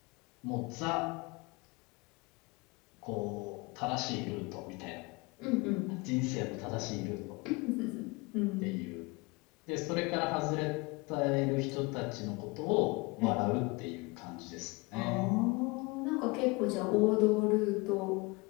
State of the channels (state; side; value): quieter; right; 25.9 dB